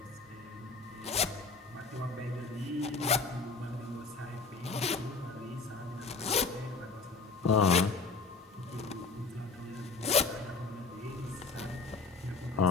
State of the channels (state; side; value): quieter; right; 4.3 dB